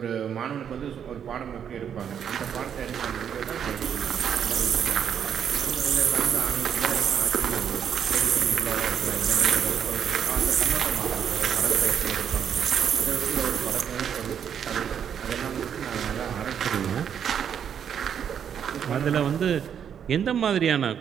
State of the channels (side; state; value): left; quieter; 8.3 dB